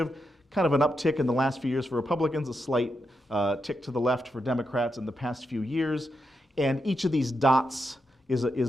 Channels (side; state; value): both; normal; correlation 0.85